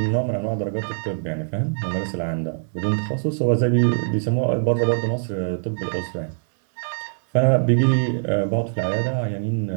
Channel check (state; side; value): silent; left; digital silence